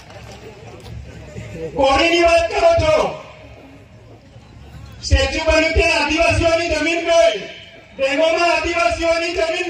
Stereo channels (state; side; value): identical; both; correlation 1.00